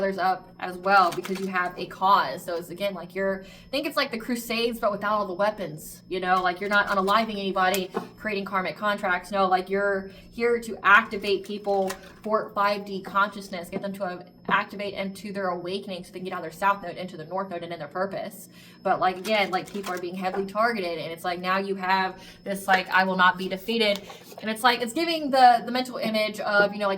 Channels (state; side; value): identical; both; correlation 1.00